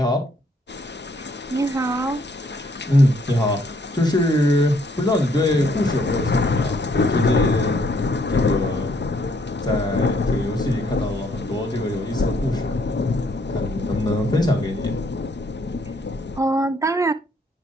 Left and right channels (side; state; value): both; normal; correlation 0.68